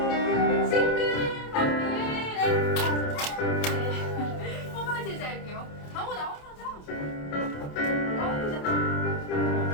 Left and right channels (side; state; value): right; late; 28 ms